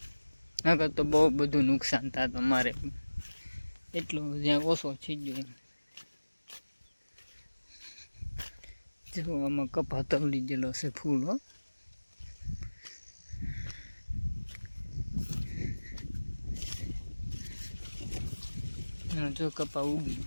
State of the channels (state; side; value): inverted; both; correlation -1.00